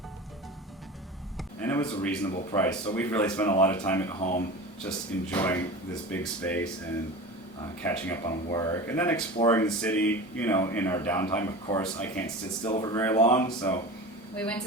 And it was a reasonable price, so we've really spent a lot of time at home just enjoying this big space and catching up on work, and then exploring the city, you know, in our downtime. Of course, I can't sit still for very long, so We went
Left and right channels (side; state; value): both; normal; correlation 0.33